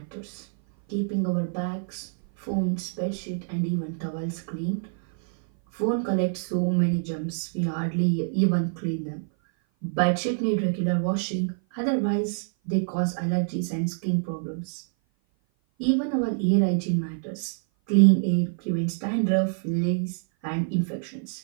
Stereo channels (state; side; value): silent; left; 56 dB below the other